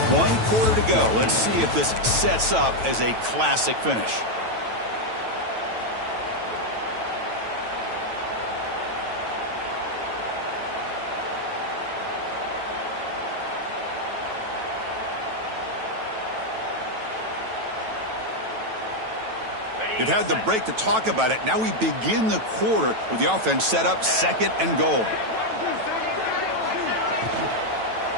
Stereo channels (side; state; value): left; late; 9.1 ms